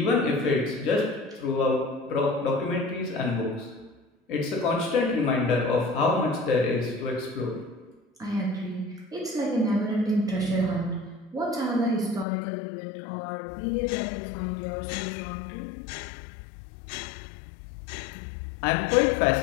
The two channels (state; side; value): drops out; right; at 12.2 s